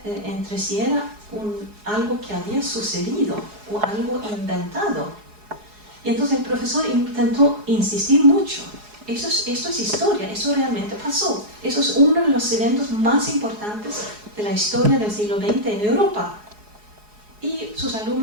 entre si era algo que había sucedido o algo inventado. Y entonces el profesor intentó insistir mucho. Esto es historia, eso realmente pasó. Eso es uno de los eventos más importantes de la historia del siglo XX en Europa. Y sus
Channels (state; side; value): late; left; 4.8 ms